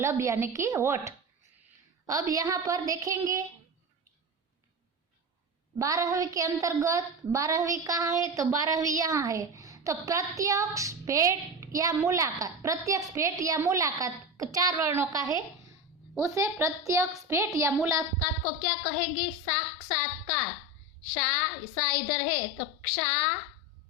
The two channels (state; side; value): normal; both; correlation 0.22